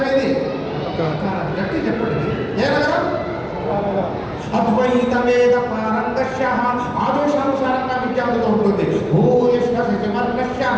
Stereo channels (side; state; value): both; identical; correlation 1.00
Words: ఏది? గట్టి చెప్పండి, ఏ నగరం? అద్వైత వేద పారంగశ్యః, ఆదేశానుసారంగా విద్యార్థులతో ఉంటుంది. భూయిష్ట సచివర్గశ్యః,